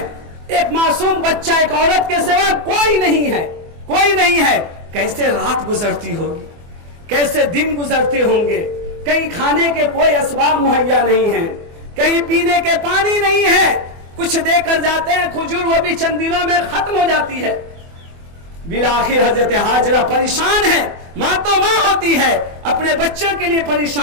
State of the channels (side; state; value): left; late; 24 ms